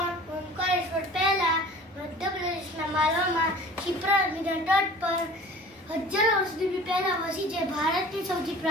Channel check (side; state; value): both; normal; correlation 0.43